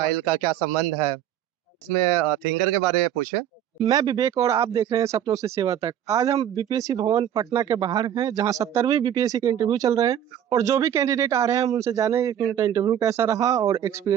का क्या संबंध है? इसमें थिंकर के बारे में पूछे। मैं विवेक और आप देख रहे हैं सपनों से सेवा तक। आज हम बीपीएससी भवन पटना के बाहर हैं, जहां 70वीं बीपीएससी के इंटरव्यू चल रहे हैं और जो भी कैंडिडेट आ रहे हैं हम उनसे जानेंगे कि उनका इंटरव्यू कैसा रहा और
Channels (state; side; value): quieter; left; 10.4 dB